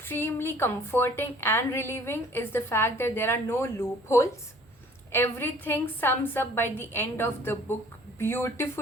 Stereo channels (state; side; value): normal; both; correlation 0.53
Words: comforting and relieving is the fact that there are no loopholes. Everything sums up by the end of the book